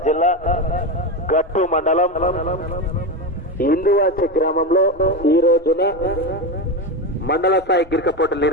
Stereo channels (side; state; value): both; normal; correlation 0.16